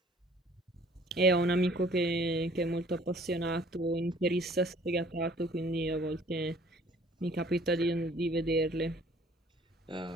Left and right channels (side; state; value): both; normal; correlation 0.54